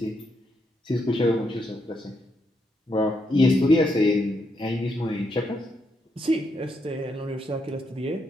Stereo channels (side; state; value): both; normal; correlation 0.79